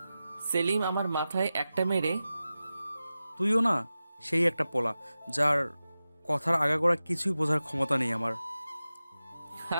সেলিম আমার মাথায় একটা মেরে তুইও না সেই একটা পোলা, যার কথার আগাগোড়া কিছুই বোঝার ক্ষমতা নেই আমার।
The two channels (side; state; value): both; inverted; correlation -0.94